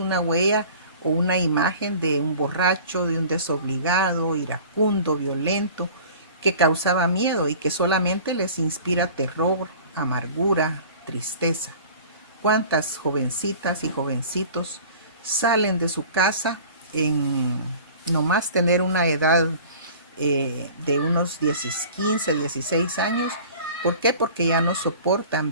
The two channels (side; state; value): both; inverted; correlation -0.44